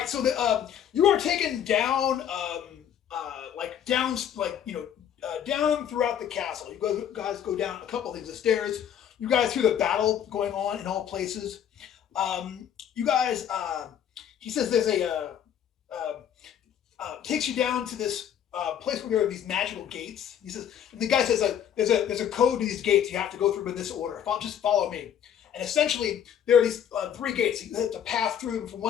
you are taken down down throughout the castle. You guys go down a couple things, the stairs. You guys hear the battle going on in all places. You guys, he says there's takes you down to this place where there are these magical gates. He says, and the guy says there's a code to these gates. You have to go through in this order. Just follow me. And essentially, there are these 3 gates. You have to pass through them from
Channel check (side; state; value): right; quieter; 9.4 dB